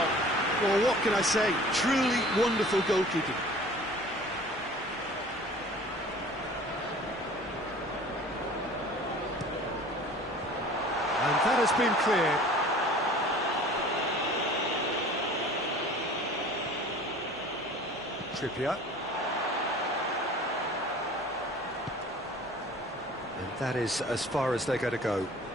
Well, what can I say? Truly wonderful goalkeeping. And that has been cleared. Trippier. And that is as far as they're going to go.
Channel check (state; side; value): normal; both; correlation 0.46